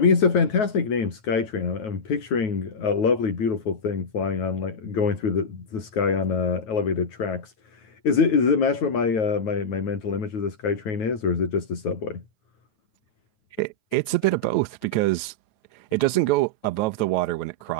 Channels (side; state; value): right; late; 9.3 ms